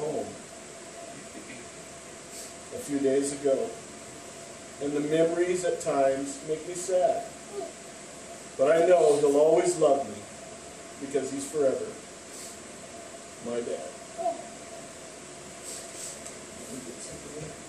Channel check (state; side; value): identical; both; correlation 1.00